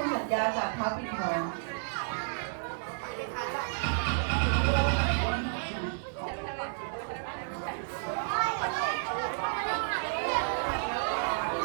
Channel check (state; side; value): silent; left; digital silence